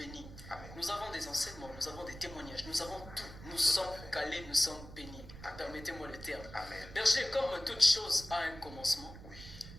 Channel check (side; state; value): right; noise; rumble, 14 dB below the sound